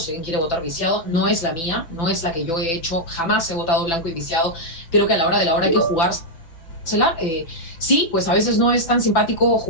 alguien quiere votar viciado. No es la mía, no es la que yo he hecho, jamás he votado blanco y viciado. Creo que a la hora de la hora hay que jugársela. Sí, pues a veces no es tan simpático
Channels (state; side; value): late; right; 6.0 ms